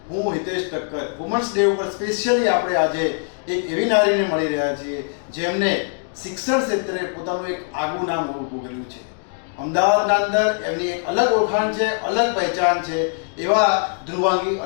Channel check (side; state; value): right; silent; 64 dB below the other